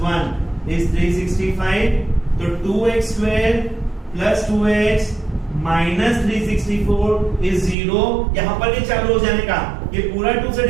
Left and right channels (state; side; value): drops out; left; at 7.8 s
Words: 1 is 365. तो 2x square plus 2x minus 364 is 0. यहां पर ये चालू हो जाने का, ये पूरा 2 से